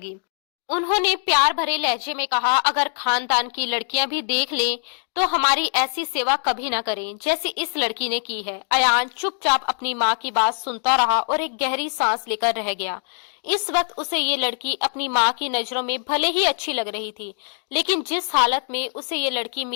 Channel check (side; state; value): right; silent; 63 dB below the other